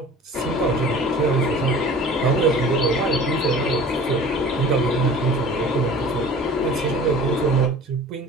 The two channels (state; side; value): normal; both; correlation 0.43